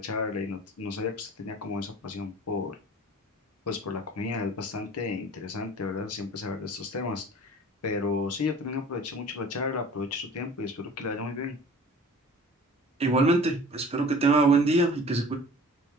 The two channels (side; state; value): both; normal; correlation 0.44